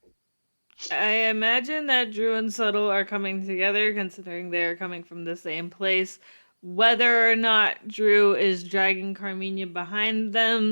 I imagine that Drew and Subtle are coming together, considering they're coming from the same place. Whether or not Drew is dragging Carmina behind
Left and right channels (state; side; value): inverted; both; correlation -1.00